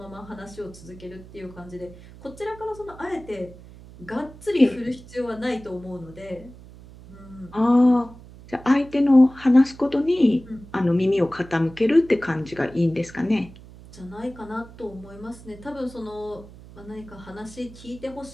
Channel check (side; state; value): right; noise; hum, 19 dB below the sound